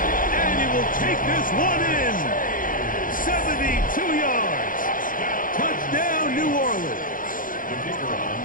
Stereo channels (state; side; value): late; right; 0.40 ms